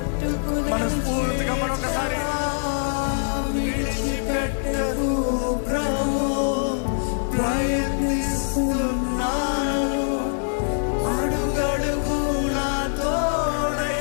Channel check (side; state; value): right; silent; digital silence